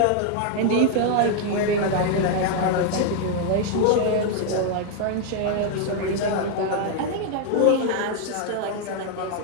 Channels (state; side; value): different; both; correlation 0.00